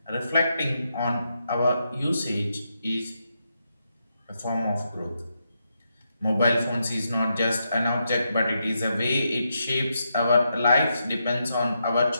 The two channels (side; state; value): both; inverted; correlation -0.83